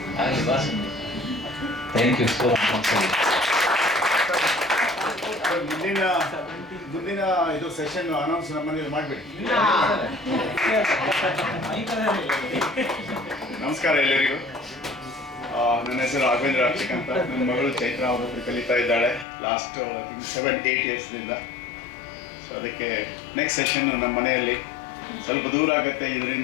ಆಗಲಿ ಬಾ Sandeep. Thank you so much. ಮುಂದಿನ ಇದು ಸೆಷನ್ ಅನೌನ್ಸ್ ನಮ್ಮನೇಲಿ ಮಾಡಬೇಡಿ. ನಮಸ್ಕಾರ ಎಲ್ಲರಿಗೂ. ನನ್ನ ಹೆಸರು ರಾಘವೇಂದ್ರ ಅಕ್ಷಿಕ್ ಅಂತ. ನನ್ನ ಮಗಳು ಚೈತ್ರ ಅವರೊಬ್ಬರು ಕಲಿತಾ ಇದ್ದಾಳೆ ಲಾಸ್ಟ್ 7-8 ಇಯರ್ಸ್ನಿಂದ. ಸೊ ಅದಕ್ಕೆ ನೆಕ್ಸ್ಟ್ ಸೆಷನ್ ನಮ್ಮ ಮನೆಯಲ್ಲಿ ಸ್ವಲ್ಪ ದೂರ ಆಗುತ್ತೆ.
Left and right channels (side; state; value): right; drops out; at 19.2 s